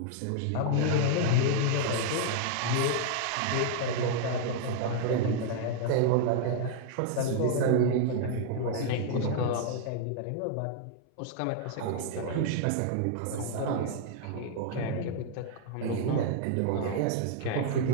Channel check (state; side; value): different; both; correlation -0.01